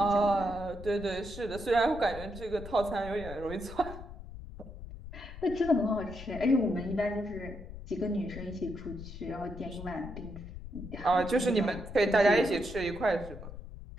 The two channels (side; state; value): left; noise; rumble, 12 dB below the sound